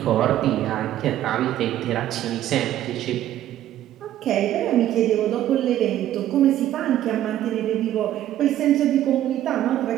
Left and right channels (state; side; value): quieter; left; 12.5 dB